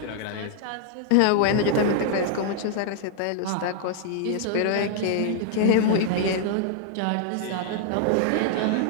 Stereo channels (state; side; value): different; both; correlation -0.01